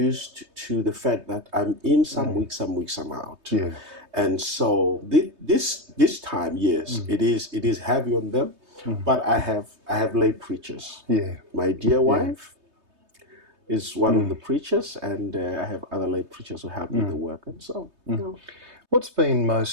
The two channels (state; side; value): late; left; 3.2 ms